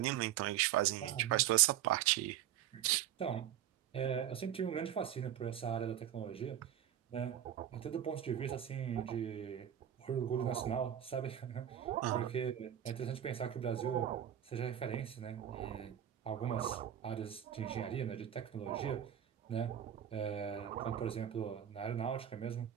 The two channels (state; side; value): quieter; left; 10.6 dB